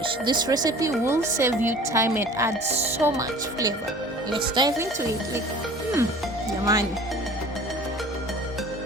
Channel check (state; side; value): normal; both; correlation 0.45